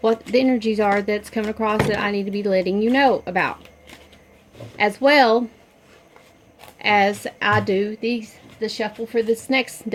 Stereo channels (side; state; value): both; identical; correlation 1.00